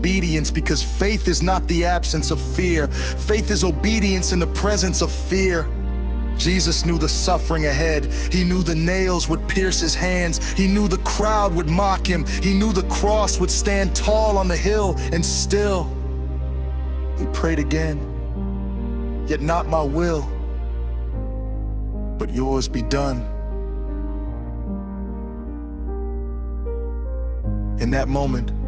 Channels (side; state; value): both; identical; correlation 1.00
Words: because faith is not the absence of fear. Faith is obedience in the presence of fear. Jesus knew the suffering ahead. He knew the nails would pierce his hands. He knew the crowd would mock him. He knew the cross would stand tall on the hill, and still, he prayed again. "Yet not my will, but yours be done." In that moment,